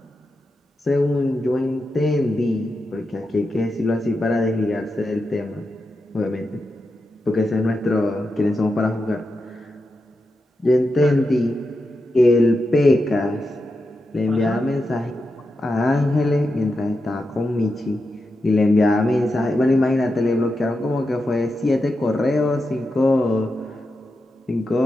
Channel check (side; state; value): both; normal; correlation 0.88